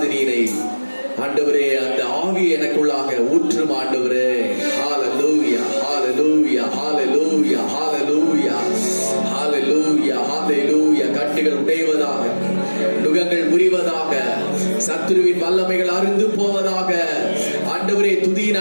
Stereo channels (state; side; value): inverted; both; correlation -1.00